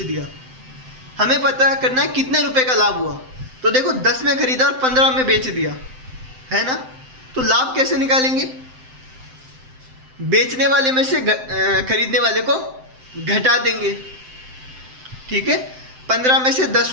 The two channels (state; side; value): late; left; 7.8 ms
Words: दिया। हमें पता करना है कितने रुपए का लाभ हुआ। तो देखो 10 में खरीदा और 15 में बेच दिया, है ना? तो लाभ कैसे निकालेंगे? बेचने वाले में से खरीदने वाले को घटा देंगे। ठीक है, 15 में से 10